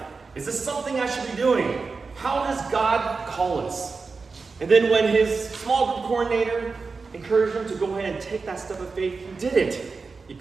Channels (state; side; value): quieter; left; 4.5 dB